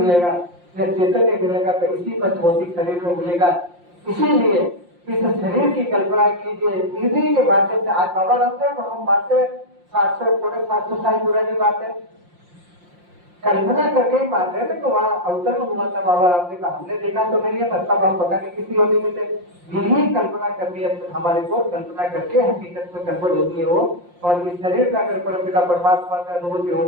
या चैतन्य मिलेगा, तो इसी पर भौतिक शरीर में मिलेगा। इसीलिए इस शरीर की कल्पना कीजिए, इसी के माध्यम से आज बाबा रामदेव को हम बातें 700 साल पुरानी बात है, कल्पना करके ही मान रहे थे कि वहाँ अवतरण हुआ था बाबा रामदेव का, हमने देखा तो नहीं है, तब हम पता नहीं किसी योनि में थे। यही कल्पना करनी है हमारे को, कल्पना करके हकीकत में कन्वर्ट होती है वो। और इस शरीर का अगर परमपिता परमात्मा का अनुभूति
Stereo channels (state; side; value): late; left; 5.7 ms